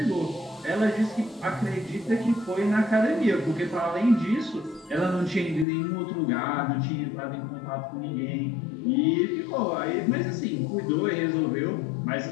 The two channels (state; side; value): drops out; right; at 5.7 s